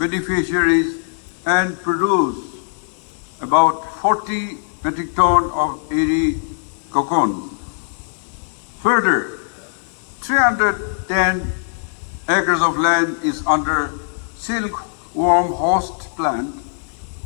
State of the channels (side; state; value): right; silent; digital silence